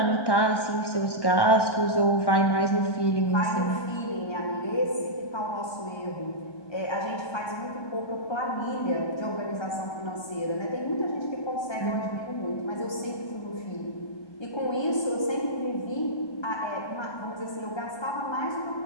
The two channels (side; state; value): right; late; 1.3 ms